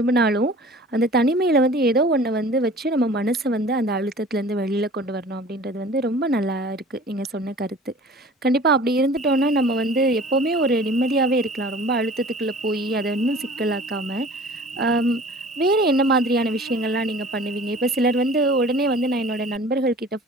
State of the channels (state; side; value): normal; both; correlation 0.45